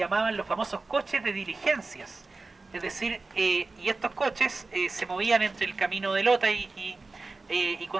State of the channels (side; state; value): left; quieter; 3.7 dB